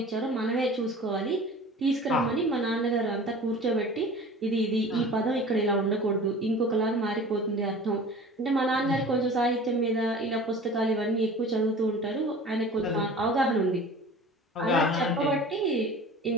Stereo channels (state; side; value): normal; both; correlation 0.41